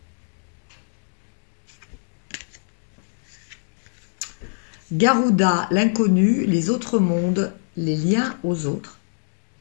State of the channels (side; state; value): right; silent; digital silence